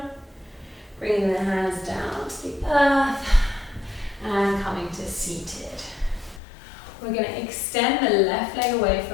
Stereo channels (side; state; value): right; drops out; at 6.4 s